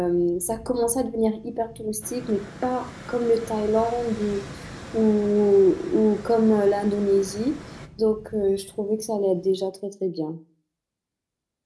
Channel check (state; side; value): identical; both; correlation 1.00